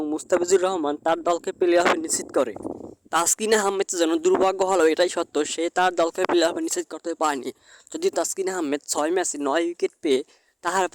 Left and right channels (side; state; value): both; identical; correlation 1.00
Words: মুস্তাফিজুর রহমান তার দলকে প্লে অফে নিশ্চিত করে। তাসকিন আহমেদ যেন দুর্ভাগ্য হলো এটাই সত্য, সে তার দলকে প্লে অফে নিশ্চিত করতে পারেনি। যদি তাসকিন আহমেদ 6 ম্যাচে 9 উইকেট পেয়ে